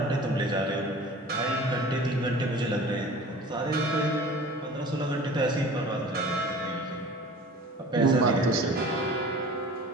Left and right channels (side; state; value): both; normal; correlation 0.42